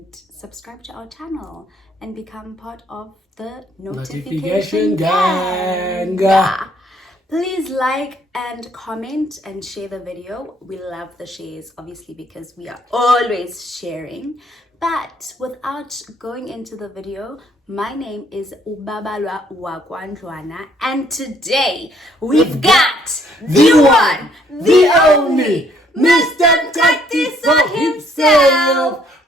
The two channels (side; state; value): both; normal; correlation 0.65